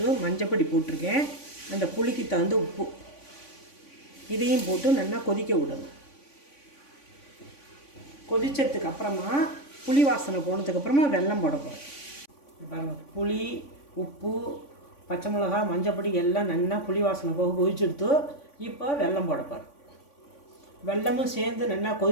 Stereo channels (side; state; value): right; late; 3.5 ms